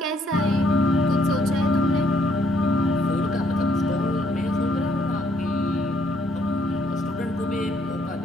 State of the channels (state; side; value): normal; both; correlation 0.69